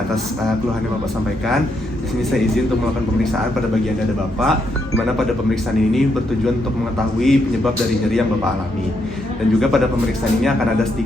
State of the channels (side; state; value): both; normal; correlation 0.78